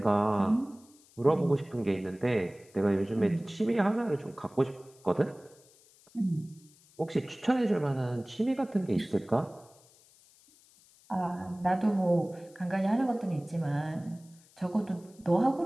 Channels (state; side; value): noise; left; hiss, 28 dB below the sound